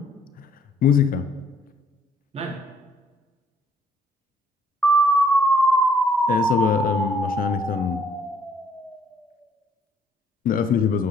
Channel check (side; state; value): both; normal; correlation 0.64